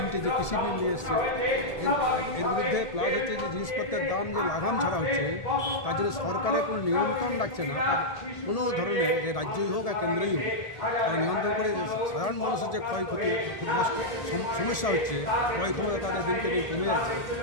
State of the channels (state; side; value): late; right; 1.8 ms